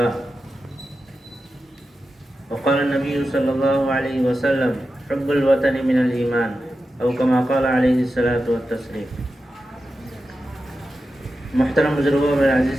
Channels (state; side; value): normal; both; correlation 0.91